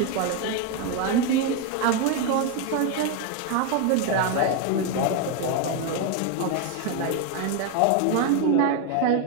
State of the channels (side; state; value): both; different; correlation 0.02